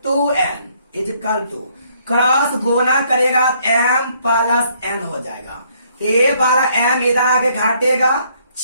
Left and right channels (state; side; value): inverted; both; correlation -0.67